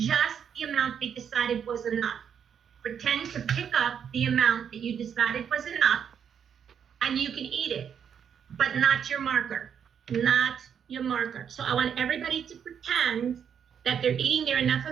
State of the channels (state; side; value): quieter; left; 7.9 dB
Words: the amount they decided was enough. Pretend to pick up the amount that you decided was enough, and you can eat it, but not your marker, not your marker. So I want everybody to pretend that they're eating their enough